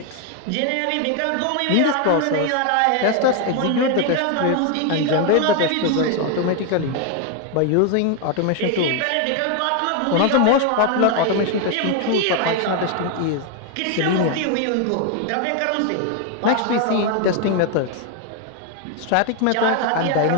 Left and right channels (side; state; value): both; different; correlation 0.01